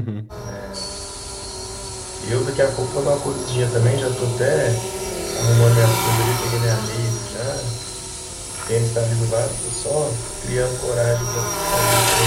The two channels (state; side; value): identical; both; correlation 1.00